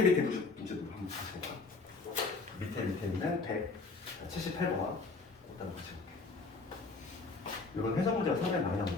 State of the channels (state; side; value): quieter; right; 4.0 dB